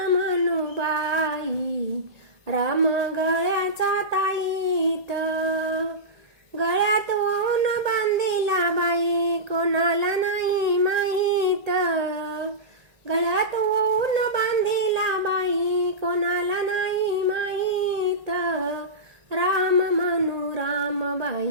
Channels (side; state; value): left; late; 1.7 ms